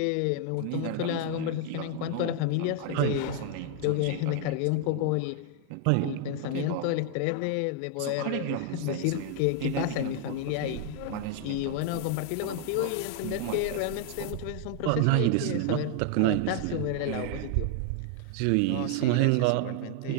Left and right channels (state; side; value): different; both; correlation 0.00